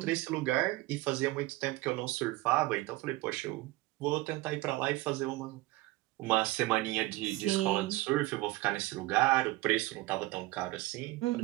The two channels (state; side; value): quieter; left; 19.9 dB